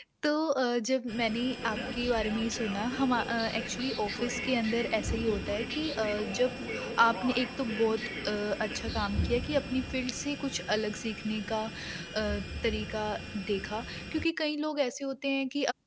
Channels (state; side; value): identical; both; correlation 1.00